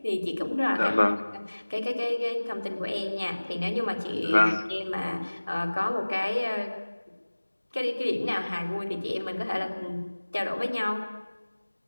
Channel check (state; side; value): inverted; both; correlation -1.00